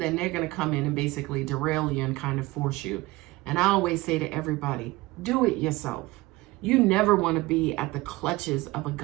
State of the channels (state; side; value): quieter; left; 20.3 dB